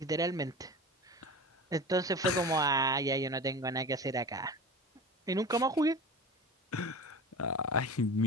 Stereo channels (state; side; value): normal; both; correlation 0.33